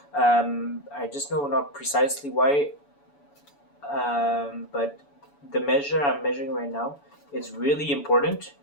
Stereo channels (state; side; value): late; right; 7.0 ms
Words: I just know not precisely why. But the measure I'm measuring right now is really important